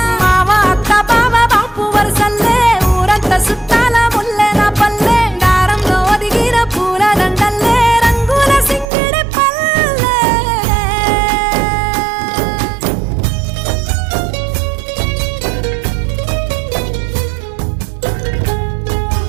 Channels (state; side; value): drops out; left; at 8.8 s